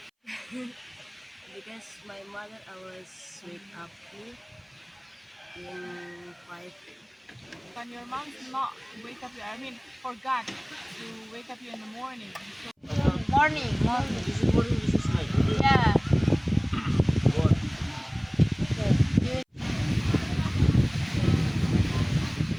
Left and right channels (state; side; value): identical; both; correlation 1.00